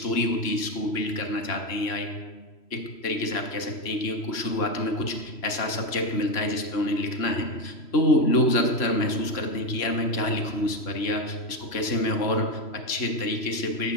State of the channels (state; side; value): late; right; 3.0 ms